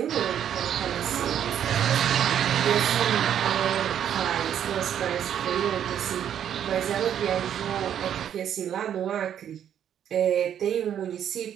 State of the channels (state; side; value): quieter; left; 9.6 dB